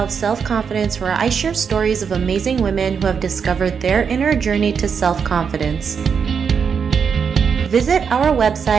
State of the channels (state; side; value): quieter; left; 6.5 dB